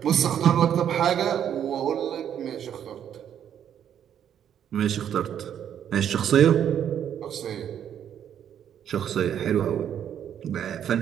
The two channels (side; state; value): left; quieter; 9.5 dB